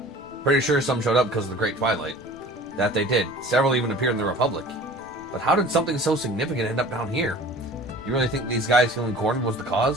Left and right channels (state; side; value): normal; both; correlation 0.44